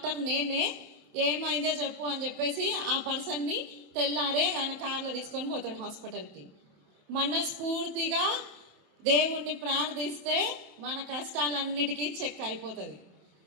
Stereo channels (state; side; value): late; left; 27 ms